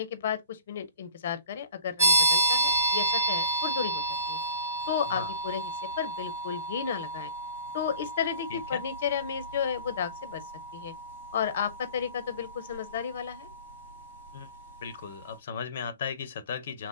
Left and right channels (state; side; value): inverted; both; correlation -0.44